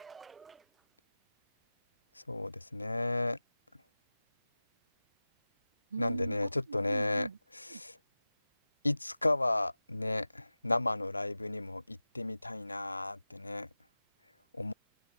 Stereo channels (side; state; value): both; inverted; correlation -0.99